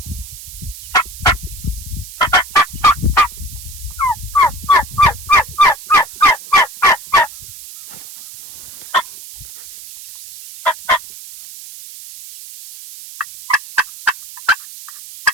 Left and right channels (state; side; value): noise; right; hiss, 16 dB below the sound